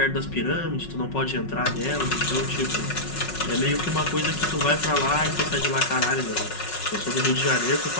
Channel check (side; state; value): right; late; 5.4 ms